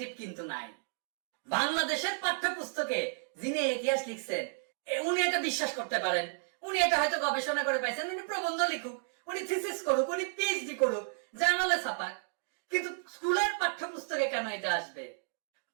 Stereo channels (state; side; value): silent; left; digital silence